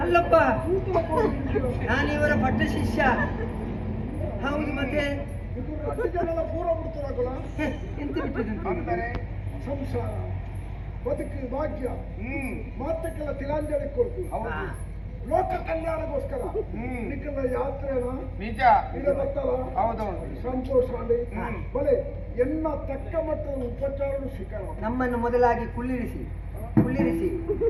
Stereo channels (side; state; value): both; identical; correlation 1.00